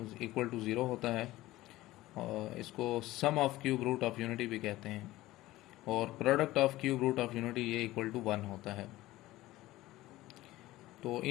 इक्वल टू 0 होता है, और इसको sum of cube root of unity भी कहते हैं, और product of cube root of unity ये इक्वल टू 1 होता है। तो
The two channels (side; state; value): right; quieter; 17.1 dB